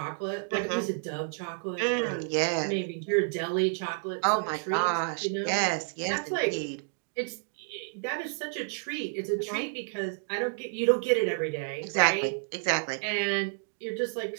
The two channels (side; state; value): left; silent; digital silence